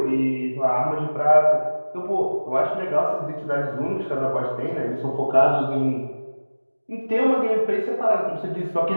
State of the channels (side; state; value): both; inverted; correlation -1.00